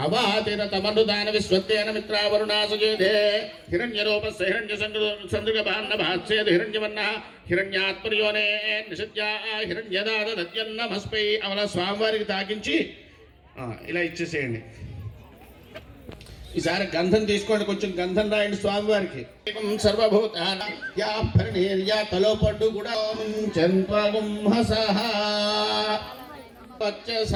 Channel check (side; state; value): both; identical; correlation 1.00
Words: అవాతిరతమనుదాన విశ్వత్తేన మిత్రావరుణాసుజేదే హిరణ్యరూపస్య హిరణ్యసందృగభాన్నభాస్యేద హిరణ్యవర్ణః హిరణ్యాత్పర్యోనే నిషద్యా హిరణ్యదాదత్యన్నమస్పై. అవలా స్వామివారికి తాకించి ఇలా ఇచ్చేసేయండి. ఈసారి గంధం తీసుకోండి, కొంచెం గంధం రాయండి స్వామివారికి. సర్వభూతాన్యా తలో పడ్డు కూడా